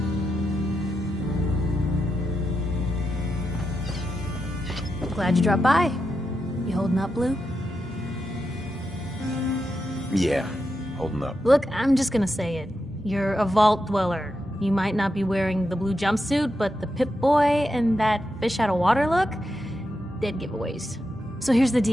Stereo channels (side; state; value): both; normal; correlation 0.86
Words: Glad you dropped by. You holding up, Blue? Yeah, holding up. Look, I'm just gonna say it. You're a vault dweller. You might not be wearing the blue jumpsuit, but the Pip-Boy and that fish out of water look? Dead giveaways. So here's the